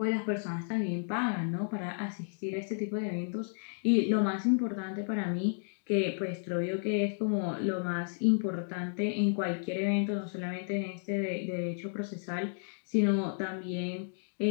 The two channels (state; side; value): silent; right; digital silence